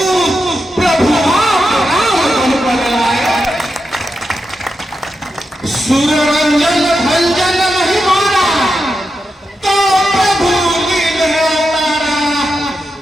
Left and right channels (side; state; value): both; normal; correlation 0.87